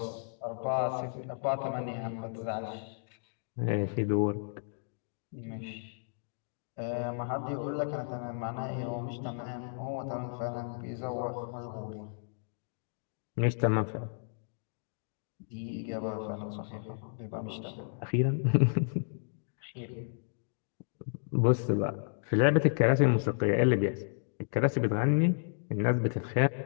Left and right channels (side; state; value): right; silent; digital silence